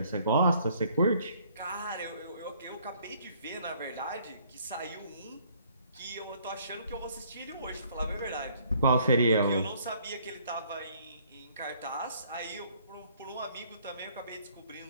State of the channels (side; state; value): both; inverted; correlation -0.62